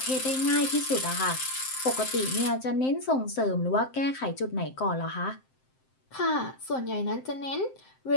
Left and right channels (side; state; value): right; late; 7.7 ms